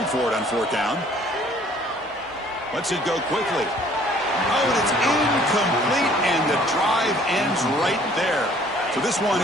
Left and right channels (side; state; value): both; normal; correlation 0.57